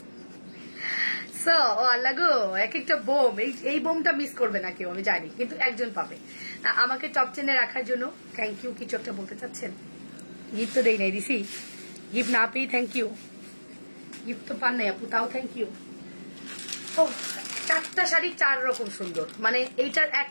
ও আল্লাহ গো, এক একটা বোম, এই বোমটা মিস করবে না কেউ আমি জানি, কিন্তু একজন পাবে। আমাকে টপ 10-এ রাখার জন্য থ্যাংক ইউ। কিছু একটা বলতে চাচ্ছেন? গিফট তো দেই নাই, দিছি গিফট না পেয়ে থ্যাংক ইউ। গিফট তো পান নাই আপু, তাও থ্যাংক ইউ। ও 4টা শাড়ি 4 রকম সুন্দর, মানে এইটার এক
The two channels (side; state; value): both; inverted; correlation -1.00